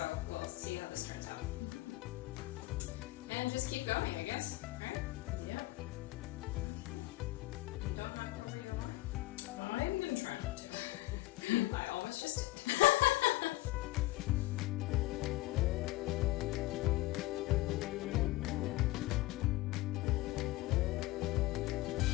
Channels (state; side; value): quieter; right; 18.9 dB